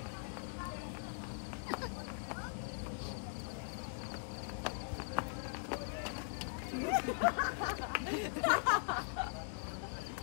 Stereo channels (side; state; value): right; silent; digital silence